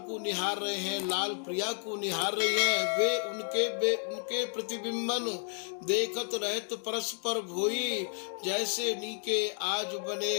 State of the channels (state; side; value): silent; right; 56 dB below the other